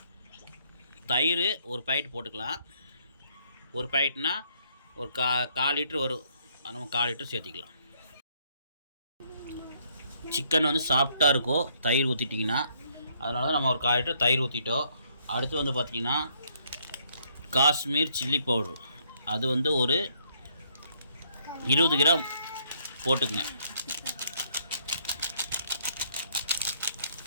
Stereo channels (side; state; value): both; inverted; correlation -0.69